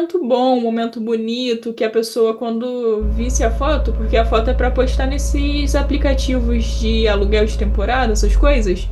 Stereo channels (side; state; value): both; identical; correlation 1.00